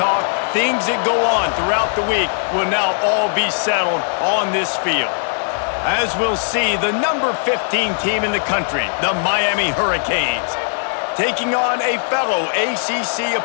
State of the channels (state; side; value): silent; right; digital silence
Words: things that go on throughout the week will now all be settled on this field. As we'll see, the number 15 team in the country, the Miami Hurricanes, taking on a fellow ACC